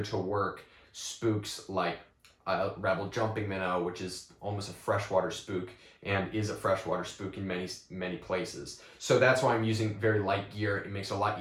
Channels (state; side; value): identical; both; correlation 1.00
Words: to work spooks like Rebel jumping minnow, which is almost a freshwater spook and is a freshwater spook in many places. So that's why I'm using very light gear. It makes it a lot